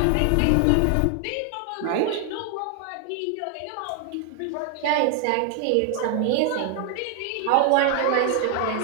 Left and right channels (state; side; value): different; both; correlation 0.00